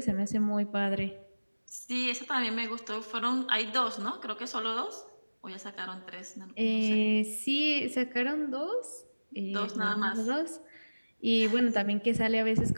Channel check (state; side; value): inverted; both; correlation -1.00